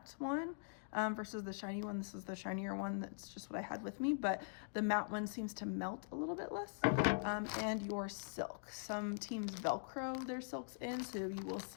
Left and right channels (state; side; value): silent; right; digital silence